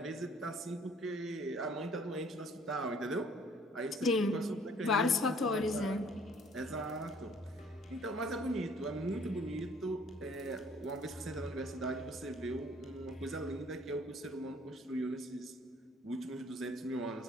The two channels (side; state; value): both; normal; correlation 0.57